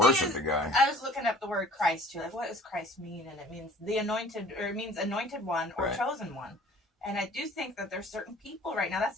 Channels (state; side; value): normal; both; correlation 0.50